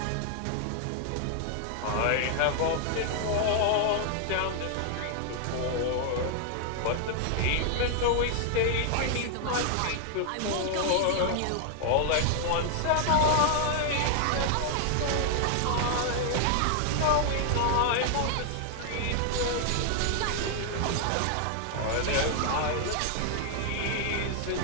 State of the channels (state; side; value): different; both; correlation 0.00